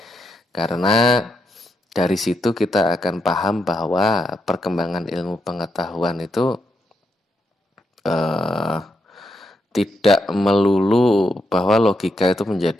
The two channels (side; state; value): both; normal; correlation 0.81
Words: karena dari situ kita akan paham bahwa perkembangan ilmu pengetahuan itu tidak melulu bahwa logika itu